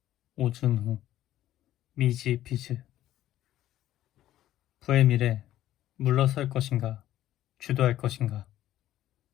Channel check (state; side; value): quieter; right; 13.3 dB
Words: 오준후, 미지 비즈. 부의 미래 물러설 것인가? 주도할 것인가?